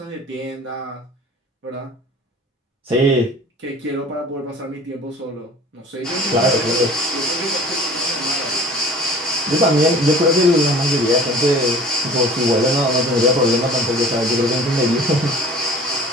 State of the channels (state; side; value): normal; both; correlation 0.45